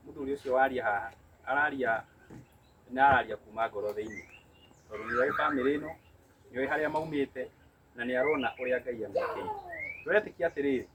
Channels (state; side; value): identical; both; correlation 1.00